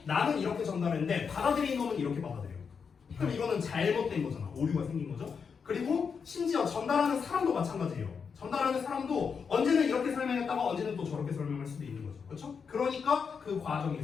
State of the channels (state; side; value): quieter; right; 6.0 dB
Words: 나는 이렇게 전달했는데 받아들인 놈은 이렇게 받아들여요. 그럼 이거는 잘못된 거잖아. 오류가 생긴 거죠. 그리고 심지어 전달하는 사람도 마찬가지예요. 전달하는 사람도 언제는 이렇게 설명했다가 언제는 또 저렇게 설명할 수도 있는 거죠. 그렇죠? 그러니까 그